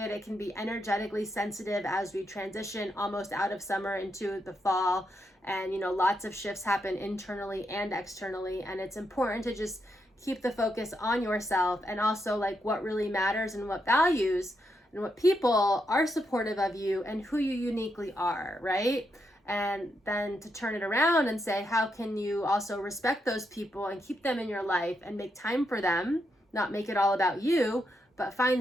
It can be energetically sensitive as we transition almost out of summer into the fall. And, you know, lots of shifts happen internally and externally. And it's important to just keep the focus on yourself, and also like what really matters and what values and what people are supportive of you and who you uniquely are, right? And then to turn it around and say, how can you also respect those people and keep them in your life and make time for them, not make it all about you, but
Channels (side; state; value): both; normal; correlation 0.81